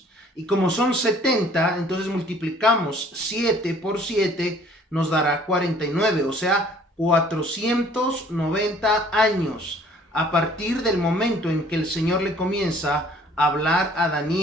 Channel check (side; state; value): both; normal; correlation 0.55